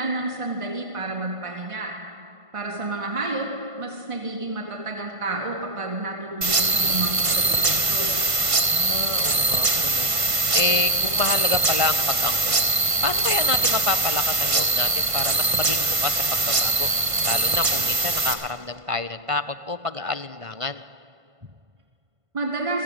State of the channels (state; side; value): late; left; 1.5 ms